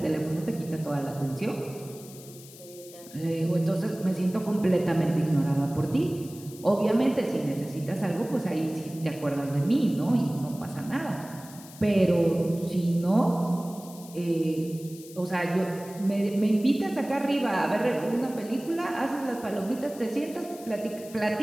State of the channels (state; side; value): noise; left; hiss, 19 dB below the sound